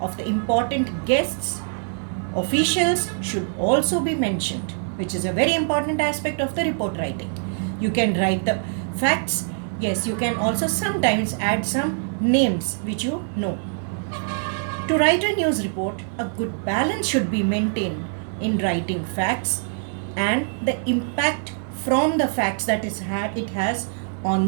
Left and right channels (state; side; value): silent; left; digital silence